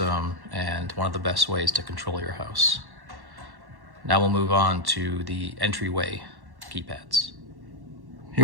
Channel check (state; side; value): late; left; 1.1 ms